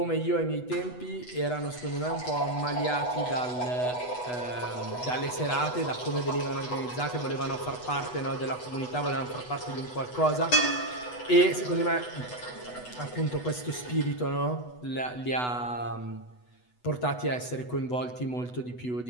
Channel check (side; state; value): right; late; 8.1 ms